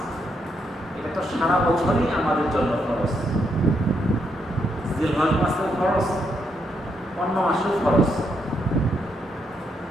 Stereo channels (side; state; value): both; normal; correlation 0.78